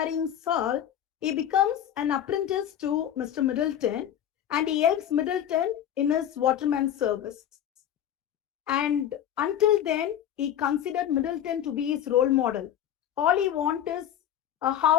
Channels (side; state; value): right; quieter; 10.4 dB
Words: Saul, he becomes an apprentice to Mr. Middleton and he helps Middleton in his waterman service. And until then, he considered Middleton to be his role model. All he wants is a